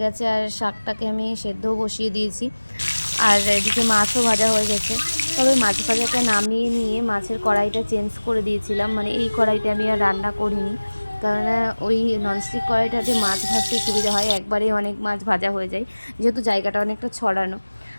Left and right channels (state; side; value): inverted; both; correlation -1.00